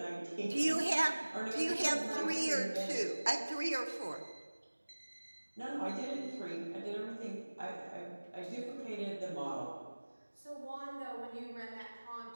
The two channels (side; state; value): both; inverted; correlation -1.00